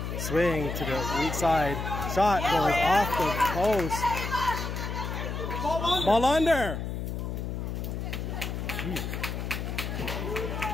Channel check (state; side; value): noise; left; hum, 4 dB below the sound